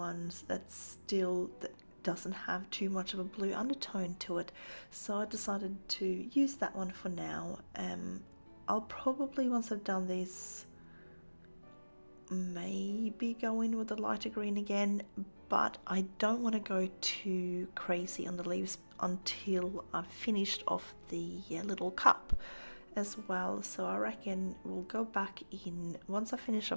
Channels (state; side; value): inverted; both; correlation -1.00